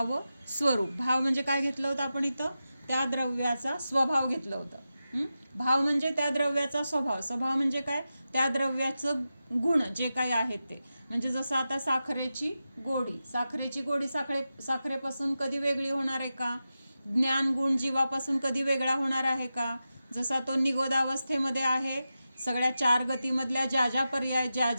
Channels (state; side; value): inverted; both; correlation -0.91